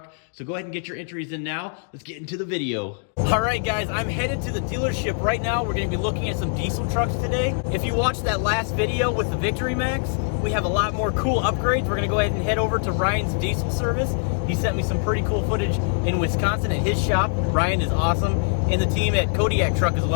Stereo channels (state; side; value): silent; right; 63 dB below the other